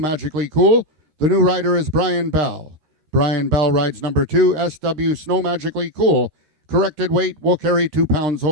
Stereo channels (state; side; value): late; left; 13 ms